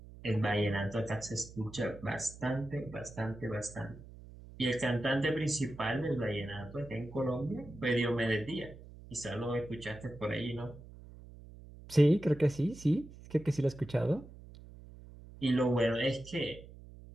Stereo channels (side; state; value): right; noise; hum, 17 dB below the sound